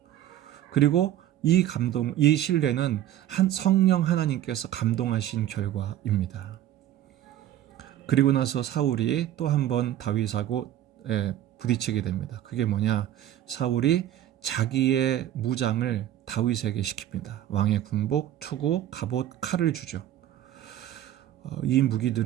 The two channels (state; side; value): quieter; left; 12.2 dB